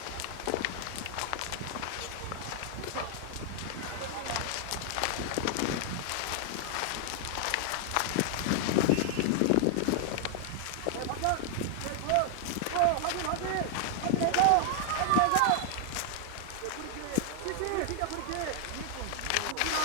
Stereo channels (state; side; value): different; both; correlation 0.00